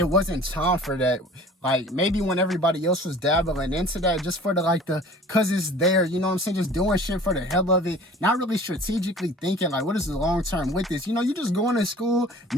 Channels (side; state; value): both; normal; correlation 0.46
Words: wasn't time for that. Like, maybe when everybody else was dabbling into that, just for the, like, cause it's there, you know what I'm saying? Just doing shit for the hell of it. Not really strategically thinking, like, what is the long term with this? You know, you just going to school,